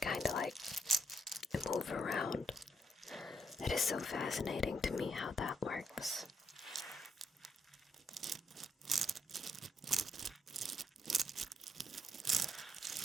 of like move around. It is so fascinating to me how that works.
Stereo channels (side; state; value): both; normal; correlation 0.74